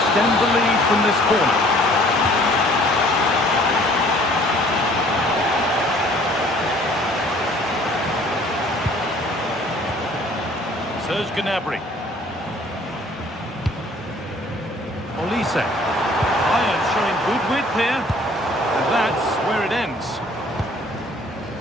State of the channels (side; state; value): both; normal; correlation 0.55